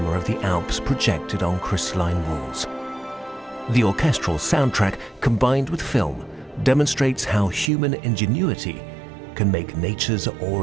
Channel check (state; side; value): drops out; left; at 7.7 s